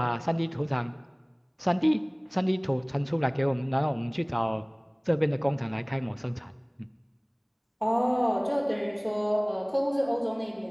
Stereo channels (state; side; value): identical; both; correlation 1.00